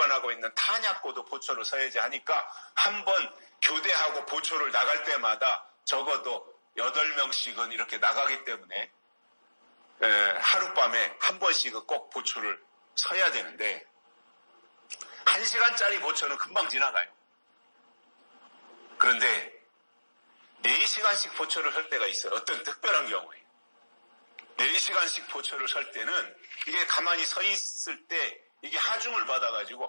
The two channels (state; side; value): inverted; both; correlation -1.00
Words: 있는 탄약고도 보초를 서야지 하니까 한 번 교대하고 보초를 나갈 때마다 적어도 8명씩은 이렇게 나가기 때문에 하룻밤에 한 번씩은 꼭 보초를 서야 되는데 1시간짜리 보초는 금방 지나가요. 그런데 4시간씩 보초를 설 때가 있어요. 어떤 특별한 경우에 4시간씩 보초를 설 때는 이게 가만히 서 있을 때 이게 하중을